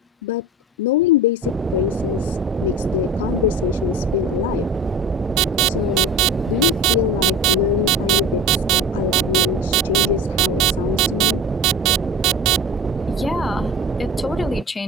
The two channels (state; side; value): normal; both; correlation 0.37